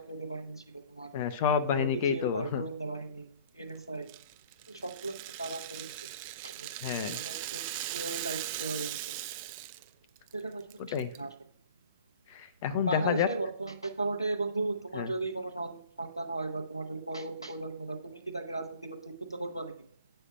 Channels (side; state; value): both; inverted; correlation -0.48